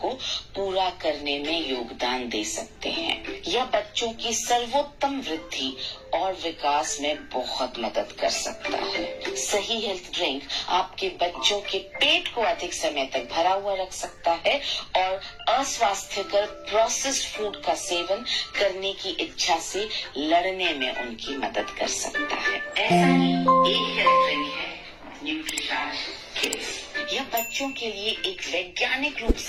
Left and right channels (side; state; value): both; identical; correlation 1.00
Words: को पूरा करने में योगदान दे सकते हैं। यह बच्चों की सर्वोत्तम वृद्धि और विकास में बहुत मदद कर सकता है। सही हेल्थ ड्रिंक आपके बच्चों के पेट को अधिक समय तक भरा हुआ रख सकता है और अस्वास्थ्यकर प्रोसेस्ड फूड का सेवन करने की इच्छा से लड़ने में उनकी मदद कर सकता है। ऐसा ही एक हेल्थ ड्रिंक है न्यूट्रीचार्ज किड्स। यह बच्चों के लिए एक वैज्ञानिक रूप